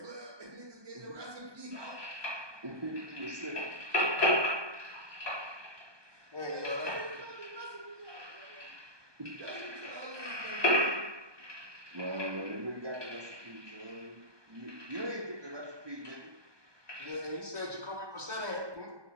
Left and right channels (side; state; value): left; late; 1.2 ms